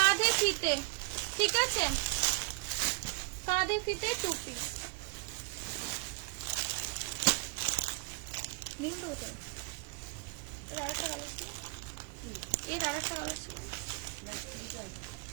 ফিতে। ঠিক আছে, কাঁধে ফিতে 2 পিস। নীলটা কোথায়? এর আরেকটা কালার ছিল, এর আরেকটা কালার ছিল।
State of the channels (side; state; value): left; quieter; 28.9 dB